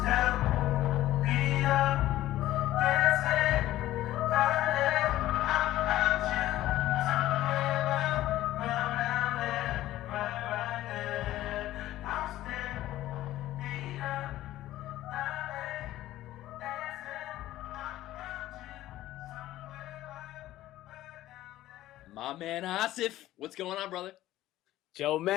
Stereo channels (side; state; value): right; quieter; 14.8 dB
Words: man Asif, what's going on, brother? Joe